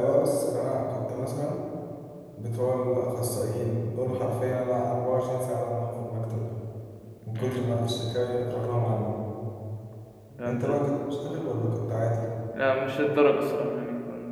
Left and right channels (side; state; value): both; identical; correlation 1.00